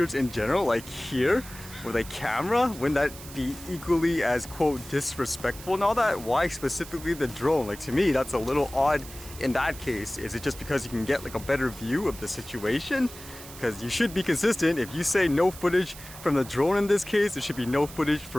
in general, like here with a camera, wouldn't that be equally as, quote, disrespectful and all that? Why specifically the drone? Like, to me, that's a little odd in that case. Is it just because you can get like a better view of the situation? Because you should be consistent. If you say no footage from the drone in this case, there should be no footage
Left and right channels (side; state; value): right; noise; hiss, 15 dB below the sound